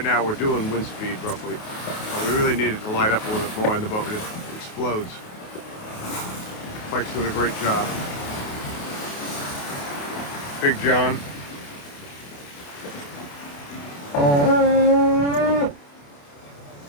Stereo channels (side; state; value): right; late; 28 ms